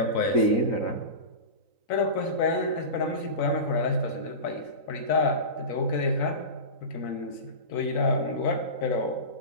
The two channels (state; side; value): late; right; 3.9 ms